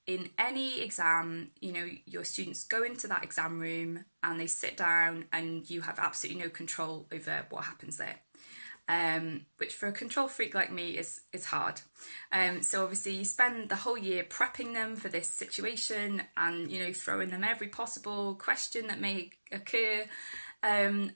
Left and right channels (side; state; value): both; inverted; correlation -1.00